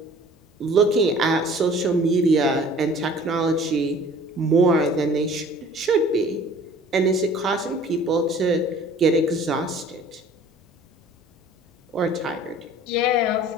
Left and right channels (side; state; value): both; normal; correlation 0.49